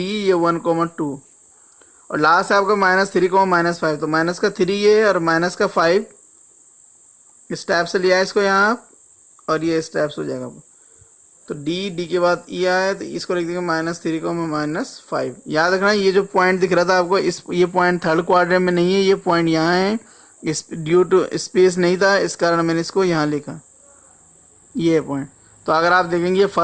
1,2 और लास्ट है आपका -3,-5, तो माइनस का 3 ये और माइनस का 5 स्टेप से लिया है इसको यहाँ आप, और ये स्टेप्स हो जाएगा। तो d के बाद e आया, तो इसको लिख देंगे -3,-5। याद रखना ये जो पॉइंट दिख रहा था आपको, ये पॉइंट थर्ड क्वाड्रेंट में नहीं है, ये पॉइंट यहाँ है, इस ड्यू टू स्पेस नहीं था इस कारण मैंने इसको यहाँ लिखा, ये पॉइंट। तो अगर आप देखेंगे ये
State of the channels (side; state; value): both; identical; correlation 1.00